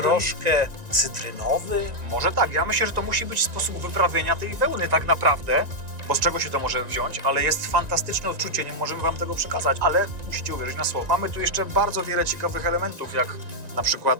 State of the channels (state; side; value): late; left; 1.9 ms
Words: cytrynowy. Może tak, ja myślę, że to musi być sposób wyprawienia tej wełny tak naprawdę, bo z czego się to może wziąć, ale jest fantastyczne odczucie, nie możemy wam tego przekazać, ale musicie uwierzyć na słowo. Mamy tu jeszcze bardzo wiele ciekawych elementów, jak na przykład